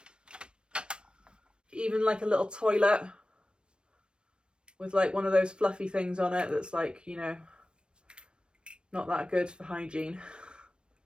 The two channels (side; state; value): left; late; 0.055 ms